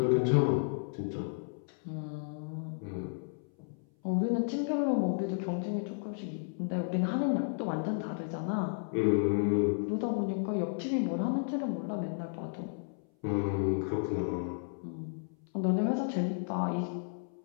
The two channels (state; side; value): silent; right; 56 dB below the other